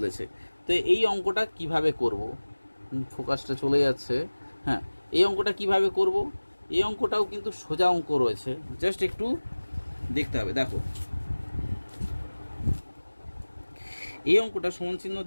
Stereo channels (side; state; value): both; inverted; correlation -1.00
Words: তো এই অঙ্কটা কিভাবে করব, ফোকাসটা চলে যাচ্ছে। হ্যাঁ, এই অঙ্কটা কিভাবে করব, এই অঙ্কটাও কিন্তু সোজা অঙ্ক রয়েছে, জাস্ট একটু দেখতে হবে। দেখো এই অঙ্কটা সমান চিহ্ন